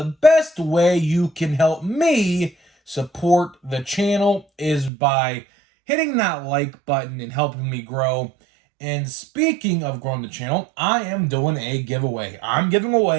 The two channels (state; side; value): drops out; left; at 4.9 s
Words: best way you can help me support the channel, is by hitting that like button and helping me grow. And speaking of growing the channel, I am doing a giveaway. I'm giving